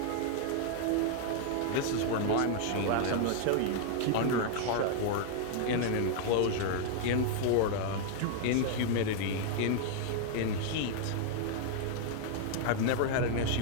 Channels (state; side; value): different; both; correlation 0.00